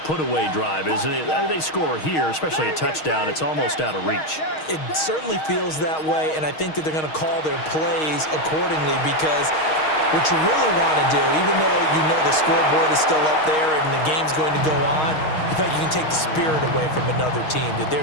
put-away drive, isn't it? I mean, they score here, especially a touchdown. It's almost out of reach. It certainly feels that way, and I think that they're going to call their plays accordingly because what you really want to do, even though you know the scoreboard is still up there and the game's going to go on, you feel like you can take the spirit away from another team, that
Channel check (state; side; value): late; right; 6.4 ms